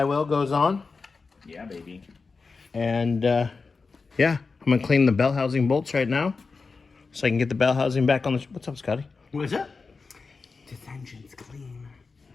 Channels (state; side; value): quieter; right; 4.4 dB